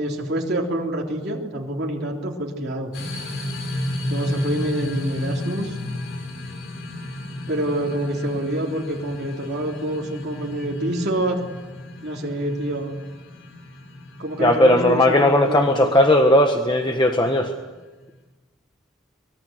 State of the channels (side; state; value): both; normal; correlation 0.48